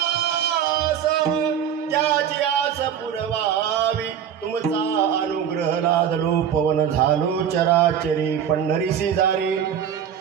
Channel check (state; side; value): quieter; left; 8.8 dB